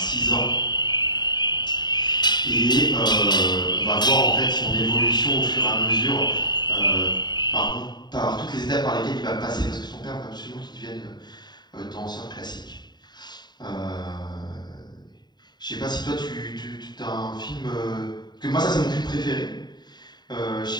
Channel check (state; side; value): late; right; 0.21 ms